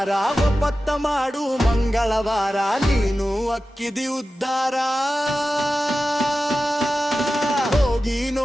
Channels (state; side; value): normal; both; correlation 0.94